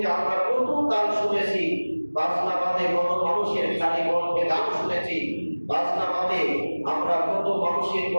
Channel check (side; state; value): both; inverted; correlation -1.00